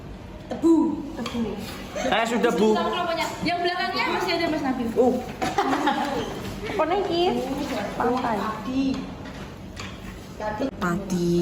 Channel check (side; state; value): both; identical; correlation 1.00